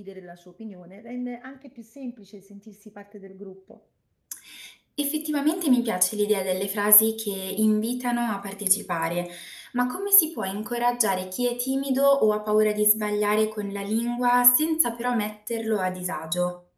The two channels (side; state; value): both; identical; correlation 1.00